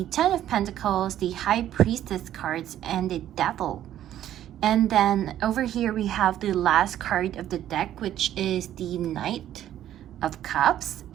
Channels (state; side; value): quieter; left; 11.8 dB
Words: Ten of Pentacles, the High Priestess cards, and the Devil. And then over here we have the last card of the deck, which is the Knight of Cups,